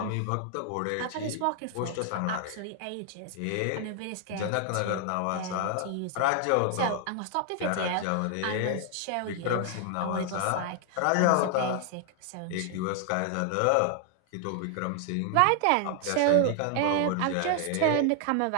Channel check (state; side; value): different; both; correlation 0.00